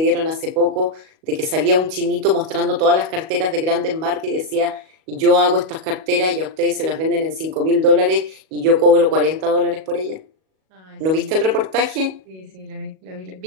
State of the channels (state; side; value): late; left; 37 ms